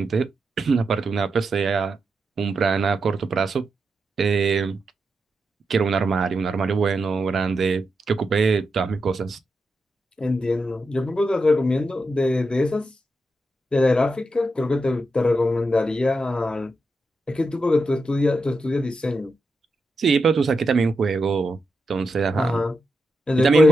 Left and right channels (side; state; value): both; normal; correlation 0.87